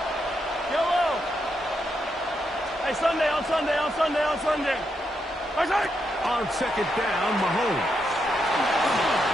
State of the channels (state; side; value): normal; both; correlation 0.82